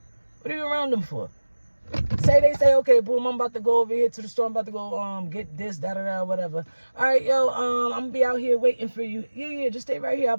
What are you around them for? They say, okay, boom, I'm about to go over here to the store. I'm about to go get this, da-da-da, whatever. All right, yo, I'm going to be out here waiting for you. Yeah, just stay right here. I'll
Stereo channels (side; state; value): both; inverted; correlation -1.00